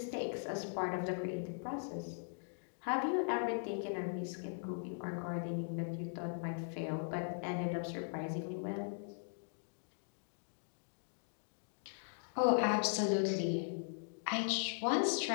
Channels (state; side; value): silent; right; digital silence